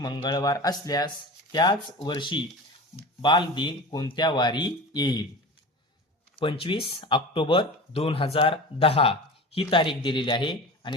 असल्यास त्याच वर्षी बालदिन कोणत्या वारी येईल? 25 ऑक्टोबर 2010 ही तारीख दिलेली आहे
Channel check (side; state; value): both; normal; correlation 0.33